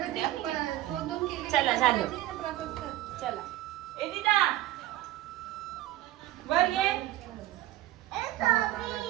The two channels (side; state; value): left; quieter; 15.2 dB